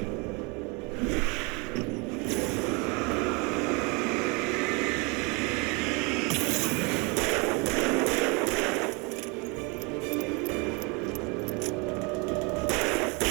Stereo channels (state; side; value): quieter; left; 29.9 dB